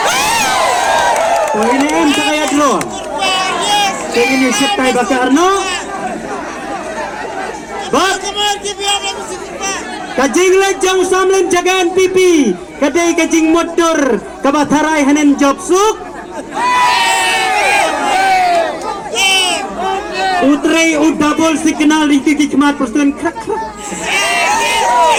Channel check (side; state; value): both; identical; correlation 1.00